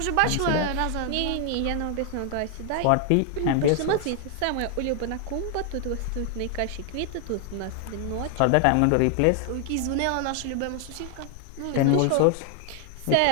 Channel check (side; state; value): both; different; correlation 0.00